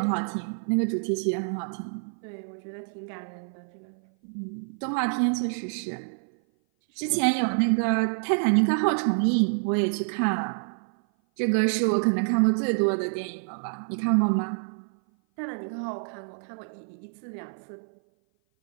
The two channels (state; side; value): silent; left; 57 dB below the other